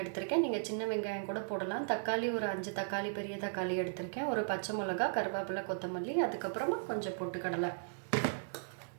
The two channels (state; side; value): silent; left; digital silence